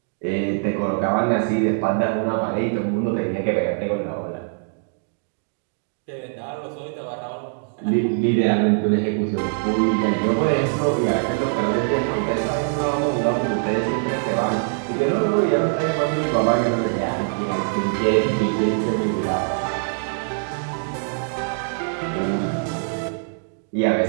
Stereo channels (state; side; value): silent; left; digital silence